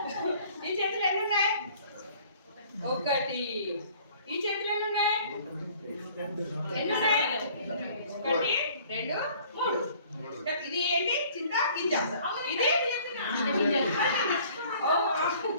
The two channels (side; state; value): both; inverted; correlation -0.54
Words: ఈ చేతిలో ఎన్ని ఉన్నాయి? ఒకటి. ఈ చేతిలో ఎన్ని ఉన్నాయి? ఎన్ని ఉన్నాయి? ఒకటి, రెండు, మూడు. ఇది ఏంటి? చింత గింజ. ఇది